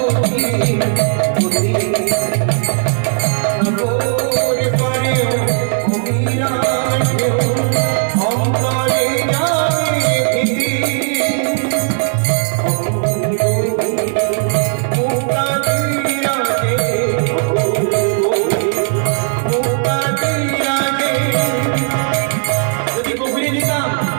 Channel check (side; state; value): left; silent; 59 dB below the other